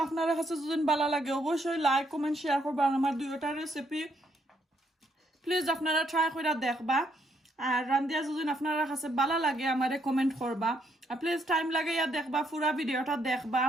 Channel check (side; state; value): both; normal; correlation 0.73